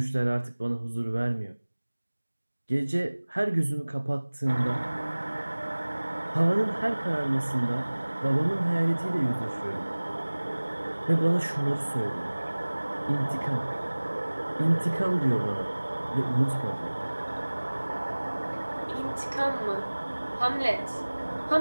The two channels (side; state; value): both; inverted; correlation -1.00